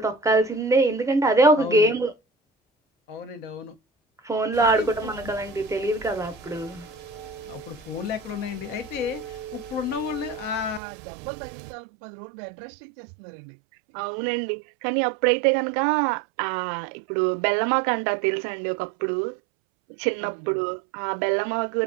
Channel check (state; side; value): drops out; left; at 10.8 s